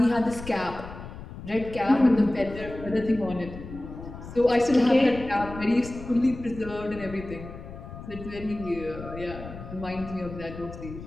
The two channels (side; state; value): left; noise; rumble, 12 dB below the sound